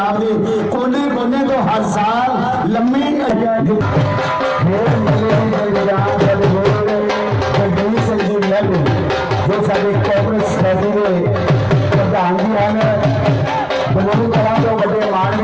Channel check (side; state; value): both; identical; correlation 1.00